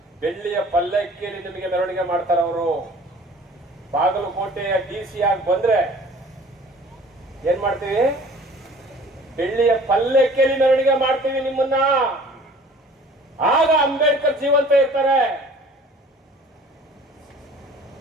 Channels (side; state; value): both; normal; correlation 0.49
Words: ಬೆಳ್ಳಿಯ ಪಲ್ಲಕ್ಕಿಯಲ್ಲಿ ನಿಮಗೆ ಮೆರವಣಿಗೆ ಮಾಡ್ತಾರೆ. ಅವರು ಬಾಗಲಕೋಟೆಯ DC ಆಗಿ ಬಂದ್ರೆ ಏನ್ ಮಾಡ್ತೀವಿ? ಬೆಳ್ಳಿಯ ಪಲ್ಲಕ್ಕಿಯಲ್ಲಿ ಮೆರವಣಿಗೆ ಮಾಡ್ತೀವಿ ನಿಮ್ಮನ್ನ. ಆಗ ಅಂಬೇಡ್ಕರ್ ಜೀವಂತ ಇರ್ತಾರೆ.